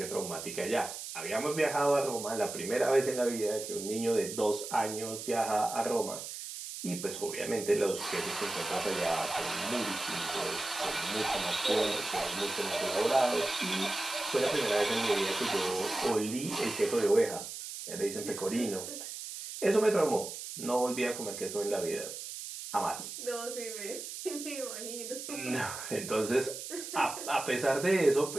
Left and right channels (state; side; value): noise; right; hiss, 8 dB below the sound